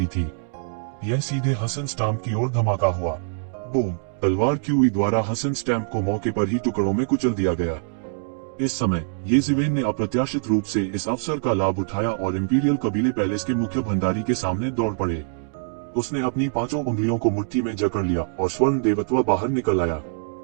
थी। यह सीधे हसन स्टैम्प की ओर धमाका हुआ। बूम! तलवार क्यूई द्वारा हसन स्टैम्प को मौके पर ही टुकड़ों में कुचल दिया गया। इस समय ये ज़िवेन ने अप्रत्याशित रूप से इस अवसर का लाभ उठाया और इंपीरियल कबीले पैलेस के मुख्य भंडारी के सामने दौड़ पड़े। उसने अपनी 5 उंगलियों को मुट्ठी में जकड़ लिया और स्वर्ण देवत्व बाहर निकल आया।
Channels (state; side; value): silent; left; digital silence